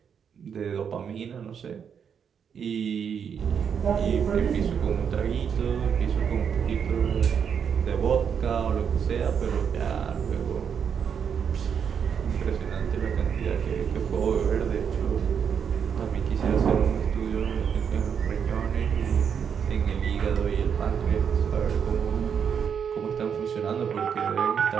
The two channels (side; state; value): left; quieter; 7.3 dB